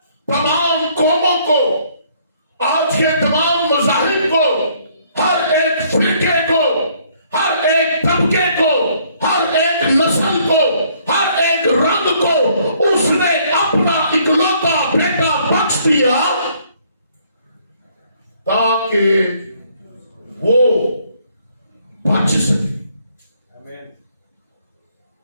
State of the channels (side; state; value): both; inverted; correlation -0.64